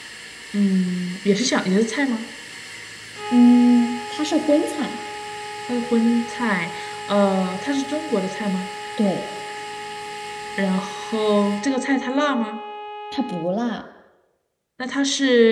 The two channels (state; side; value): identical; both; correlation 1.00